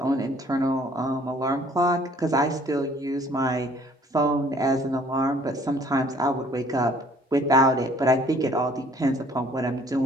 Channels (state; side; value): normal; both; correlation 0.57